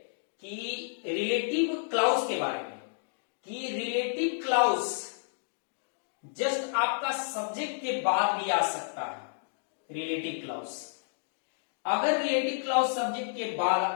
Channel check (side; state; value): right; silent; digital silence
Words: कि रिलेटिव क्लाउज के बारे में, कि रिलेटिव क्लाउज जस्ट आपका सब्जेक्ट के बाद भी आ सकता है। रिलेटिव क्लाउज, अगर रिलेटिव क्लाउज सब्जेक्ट के बाद